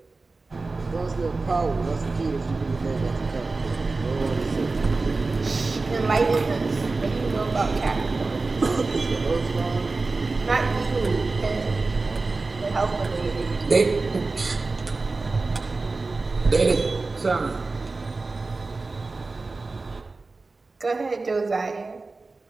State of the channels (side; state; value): left; quieter; 3.7 dB